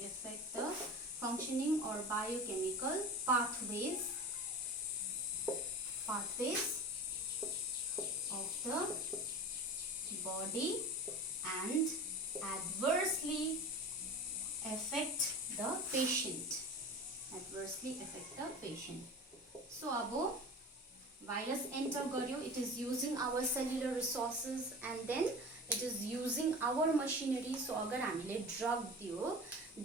affect the functioning or biochemical pathways of the body and adversely affect the patient. So abo virus enter garyo, it is using our cellular resources and then it is using our machinery. So agar हामीले drug दियो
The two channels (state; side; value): normal; both; correlation 0.34